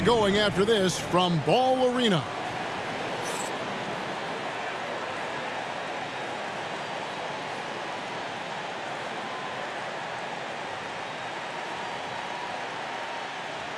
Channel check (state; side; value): identical; both; correlation 1.00